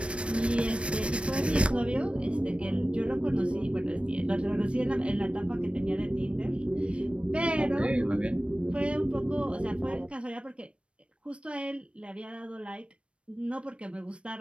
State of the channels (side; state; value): left; late; 0.060 ms